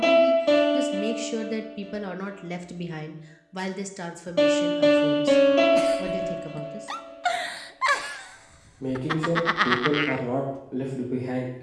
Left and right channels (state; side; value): identical; both; correlation 1.00